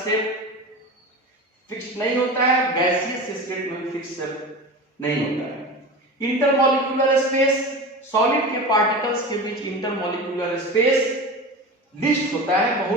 फिक्स नहीं होता है, गैसियस स्टेट में भी फिक्स नहीं होता है। इंटरमॉलिक्यूलर स्पेस, सॉलिड के पार्टिकल्स के बीच इंटरमॉलिक्यूलर स्पेस लिस्ट होता है,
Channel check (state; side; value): normal; both; correlation 0.30